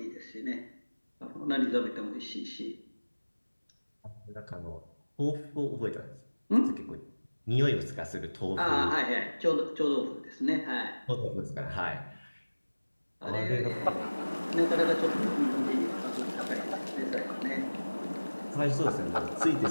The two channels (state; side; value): inverted; both; correlation -1.00